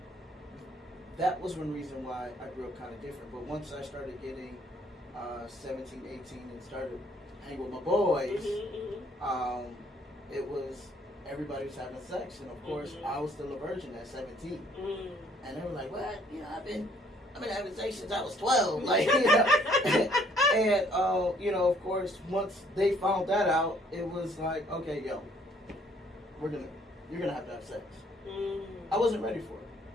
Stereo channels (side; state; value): both; normal; correlation 0.63